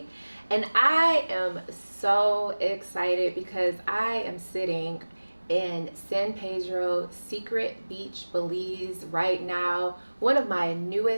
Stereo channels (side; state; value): both; inverted; correlation -1.00